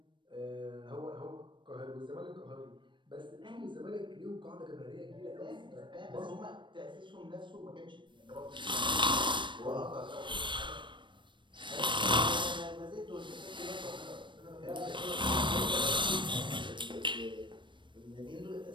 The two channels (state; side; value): late; left; 0.23 ms